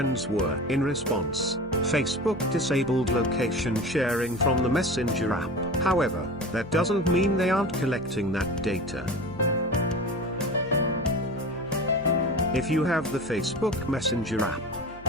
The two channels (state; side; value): noise; right; hum, 20 dB below the sound